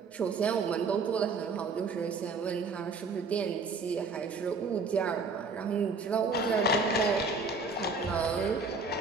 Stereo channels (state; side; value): quieter; left; 4.1 dB